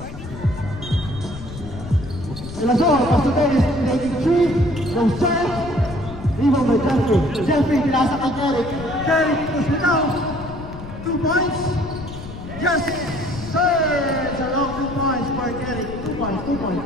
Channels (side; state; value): left; noise; rumble, 12 dB below the sound